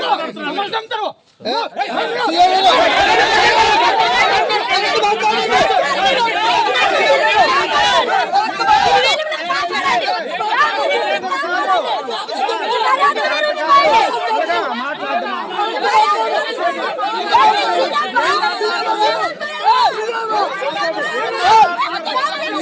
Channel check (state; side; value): identical; both; correlation 1.00